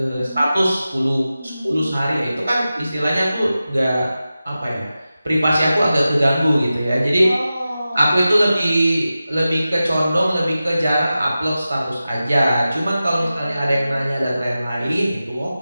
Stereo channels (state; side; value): inverted; both; correlation -0.94